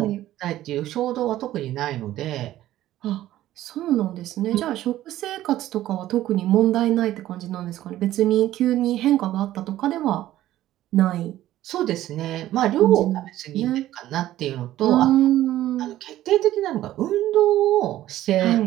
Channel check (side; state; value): left; quieter; 14.0 dB